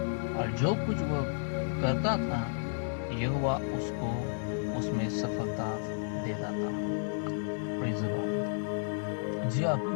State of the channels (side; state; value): right; silent; digital silence